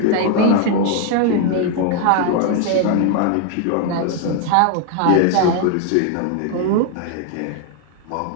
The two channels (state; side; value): different; both; correlation 0.00